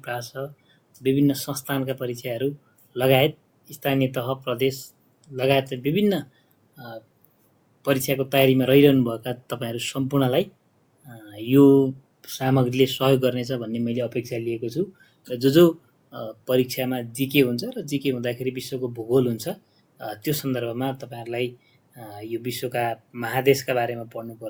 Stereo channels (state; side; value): identical; both; correlation 1.00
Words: प्रास, विभिन्न संस्थानका परीक्षाहरू लगायत स्थानीय तह, प्रदेश लगायत विभिन्न परीक्षाको तयारीमा रहिरहनुभएका तपाईँहरू सम्पूर्णलाई यो सामग्रीले सहयोग गर्नेछ भन्ने मैले अपेक्षा लिएको छु। र जो परीक्षामा जिके हुन्छ र जिके हुँदाखेरि विश्वको भूगोल हुन्छ, त्यो सन्दर्भमा तपाईँहरूलाई यो विश्वका महादेशका बारेमा